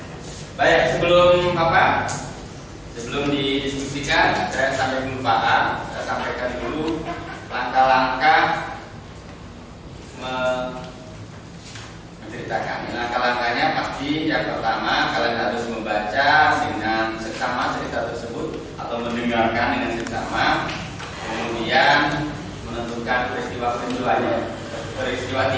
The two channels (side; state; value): both; identical; correlation 1.00